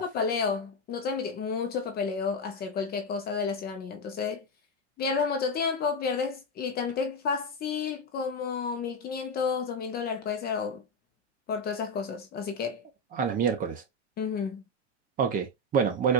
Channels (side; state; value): both; normal; correlation 0.08